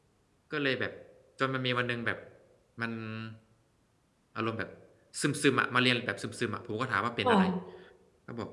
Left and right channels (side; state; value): both; identical; correlation 1.00